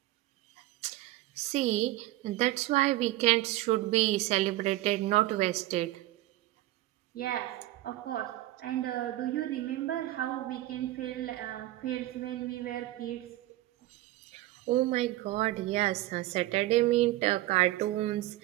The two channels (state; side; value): quieter; left; 16.6 dB